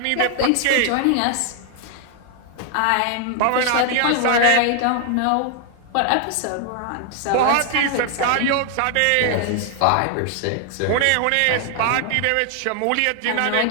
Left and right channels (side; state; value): both; different; correlation 0.00